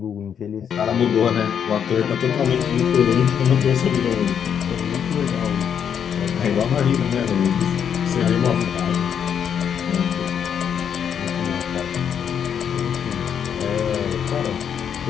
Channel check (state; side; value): quieter; right; 8.1 dB